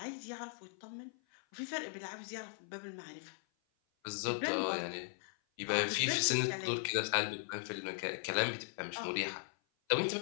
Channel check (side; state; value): right; silent; 52 dB below the other